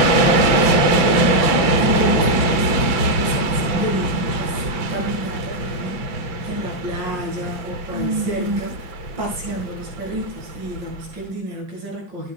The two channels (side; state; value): left; late; 5.9 ms